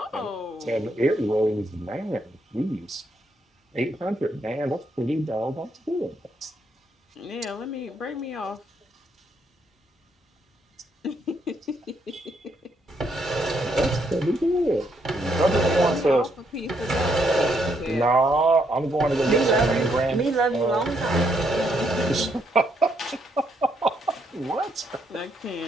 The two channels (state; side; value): normal; both; correlation 0.74